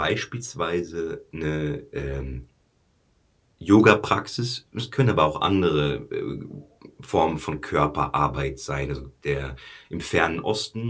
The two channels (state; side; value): identical; both; correlation 1.00